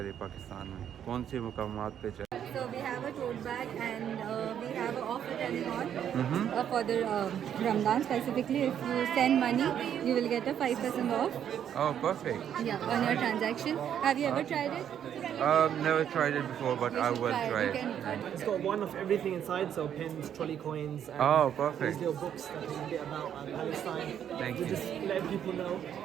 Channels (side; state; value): left; quieter; 9.4 dB